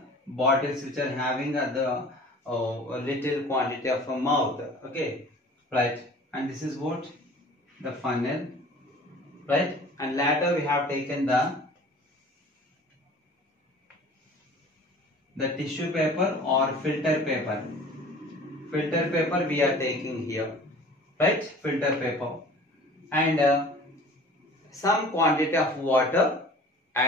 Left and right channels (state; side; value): normal; both; correlation 0.45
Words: bottles which are having the little quantity of a mouth. Okay, right? And this is what the funnel, right? And later we have taken the tissue paper or filter paper. Filter paper we are taking here, right? Filter paper, and some quantity of water